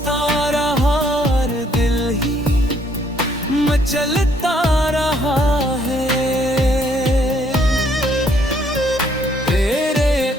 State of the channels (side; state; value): both; normal; correlation 0.66